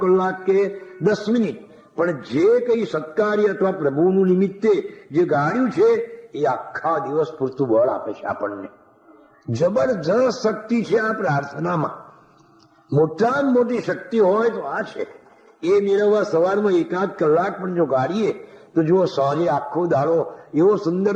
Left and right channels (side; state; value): both; identical; correlation 1.00